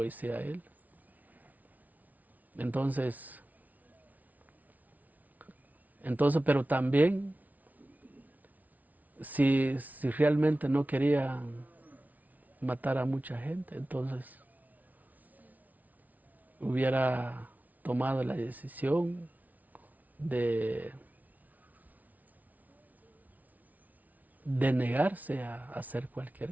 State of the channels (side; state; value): left; late; 0.075 ms